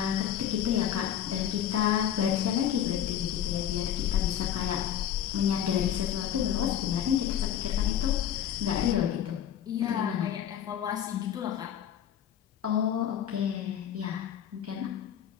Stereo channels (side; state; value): right; quieter; 9.8 dB